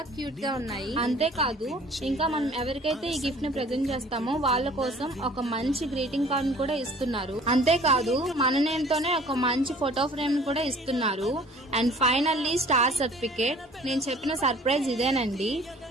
క్యూట్ గా ఉన్నాయి. అంతేకాదు ఇంకా మనం ఎవరికైతే ఈ గిఫ్ట్ ని ప్రెజెంట్ చేస్తామో వాళ్ళ కోసం ఒక మంచి గ్రీటింగ్ కార్డ్ ని కూడా ఇస్తున్నారు. అంతేకాదు మన నేమ్ తోనే ఒక మంచి ఫోటో ఫ్రేమ్ ని కూడా ఇస్తున్నారు. And finally star certificate. నేను చెప్పిన సర్ప్రైజ్ ఇదేనండి.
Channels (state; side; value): normal; both; correlation 0.51